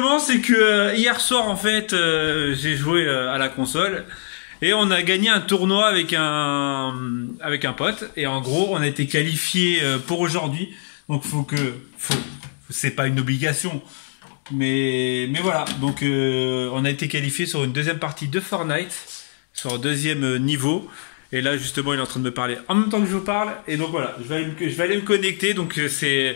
c'est que hier soir, en fait, j'ai joué à la console et on a gagné un tournoi avec un pote. Et en gros, on a été qualifié pour aujourd'hui. Donc, c'est pas une obligation, mais voilà. Donc, on a été qualifié sur une deuxième partie de Fortnite, sur un deuxième niveau. Et là, justement, il est en train de me parler en même temps que je vous parle. Et donc voilà, je vais aller me connecter. Donc, c'est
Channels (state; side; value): silent; right; digital silence